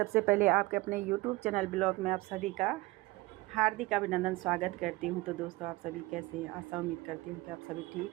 पहले आपके अपने यूट्यूब चैनल ब्लॉग में आप सभी का हार्दिक अभिनंदन स्वागत करती हूं। तो दोस्तों, आप सभी कैसे हैं? आशा उम्मीद करती हूं कि आप सभी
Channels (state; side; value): quieter; left; 21.1 dB